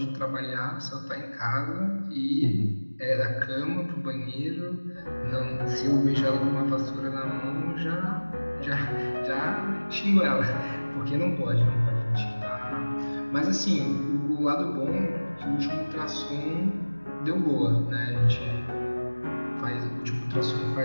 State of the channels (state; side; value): inverted; both; correlation -1.00